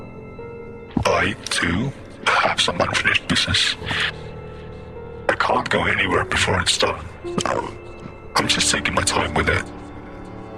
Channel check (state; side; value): identical; both; correlation 1.00